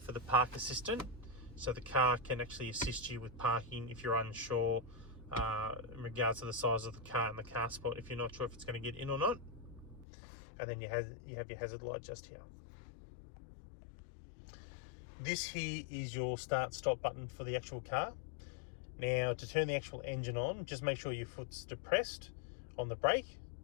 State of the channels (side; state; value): right; drops out; at 10.1 s